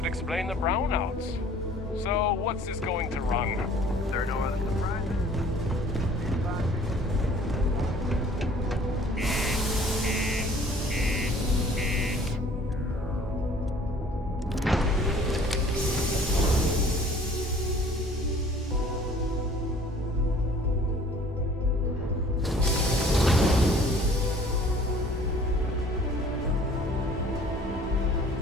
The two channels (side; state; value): both; normal; correlation 0.52